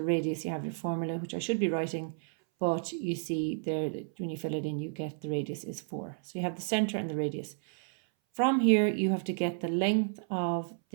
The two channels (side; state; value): left; silent; 57 dB below the other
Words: radius. You have your formula, which I should be writing, but you see there that when you fill it in, you get the radius is 4. So you have the center and the radius. From here, you have to get the length of